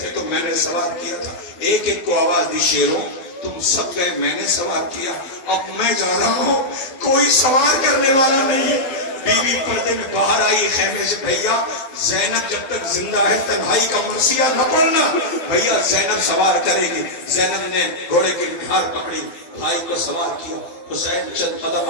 تو میں نے سوار کیا تھا. ایک ایک کو آواز دی, شیروں تم سب گئے میں نے سوار کیا, اب میں جا رہا ہوں, کوئی سوار کرنے والا نہیں ہے. بیوی پردے میں باہر آئی خیمے سے, بھیا زینب جب تک زندہ ہے تنہائی کا مرثیہ نہ پڑھنا, بھیا زینب سوار کرے گی. زینب نے گھوڑے کی نکھار پکڑی, بھائی کو سوار کیا. حسین چند قدم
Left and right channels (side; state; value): right; late; 12 ms